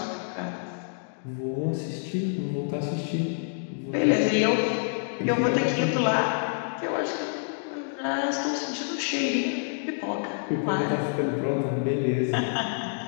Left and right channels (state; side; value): silent; right; digital silence